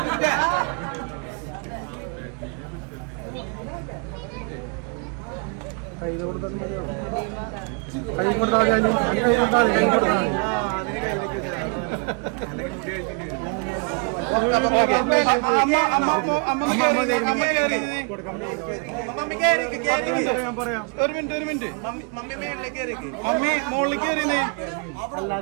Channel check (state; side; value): quieter; left; 36.5 dB